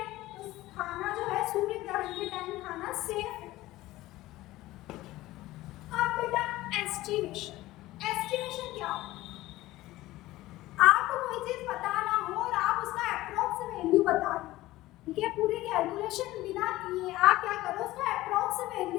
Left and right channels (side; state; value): right; quieter; 17.2 dB